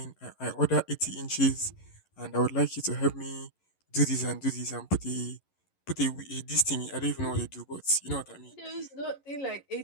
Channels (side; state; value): right; late; 11 ms